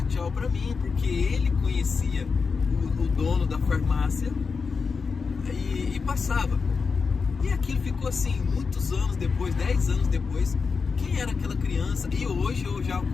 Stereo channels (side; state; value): right; quieter; 5.1 dB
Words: tchau para mim, porque ele conhecia o dono da farmácia e passava. E aquilo ficou assim, muitos anos depois, 10 anos depois, quem era aquela criança? E hoje eu já o